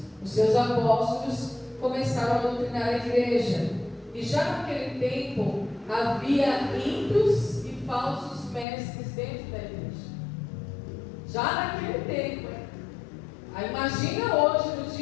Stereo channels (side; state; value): right; drops out; at 8.7 s